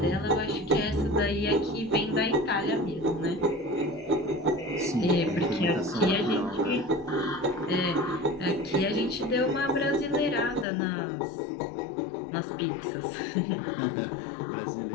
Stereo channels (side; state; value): right; drops out; at 10.7 s